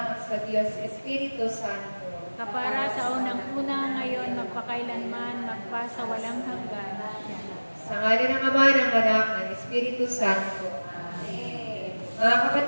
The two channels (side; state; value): both; inverted; correlation -1.00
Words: sa Diyos Espiritu Santo. Kapara sa unang-una ngayon, magpakailanman, magpa sa walang hanggan. Sa ngalan ng Ama, ng Anak, ng Espiritu Santo. Amen. Mga